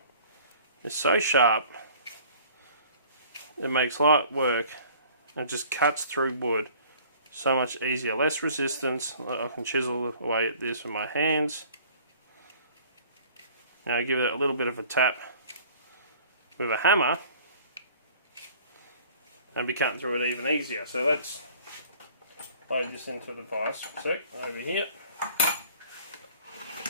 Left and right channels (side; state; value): both; inverted; correlation -0.51